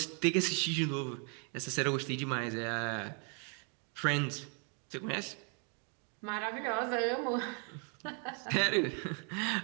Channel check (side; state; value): left; quieter; 38.6 dB